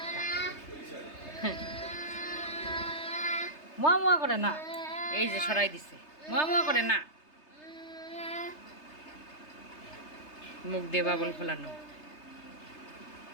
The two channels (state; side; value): late; right; 3.3 ms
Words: মোয়া মোয়া করে না, এই যে সরাই দিছে। মোয়া মোয়া করে না, মুখ দিয়ে বাবল ফোলানো।